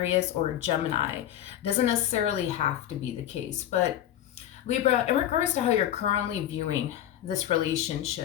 or a Gemini. Doesn't necessarily have to be the case, but Libra, in regards to how you're currently viewing this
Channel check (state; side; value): quieter; right; 11.7 dB